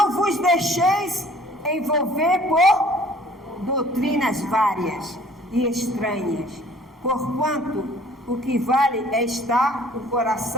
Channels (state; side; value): normal; both; correlation 0.54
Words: vos deixeis envolver por doutrinas várias e estranhas, porquanto o que vale é estar o